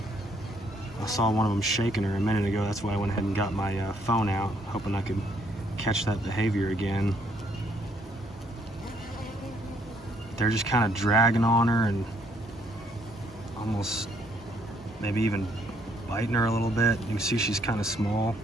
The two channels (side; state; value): both; normal; correlation 0.68